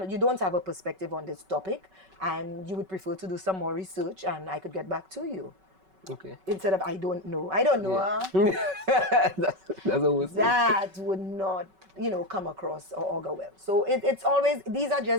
don't have a perspective on this topic, and you would prefer to do some more research, and I could get back to you. Okay. Instead of, I don't know. I don't know. Yeah. That's always that would not, come across or augur well. So it's always, these are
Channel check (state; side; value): late; left; 5.3 ms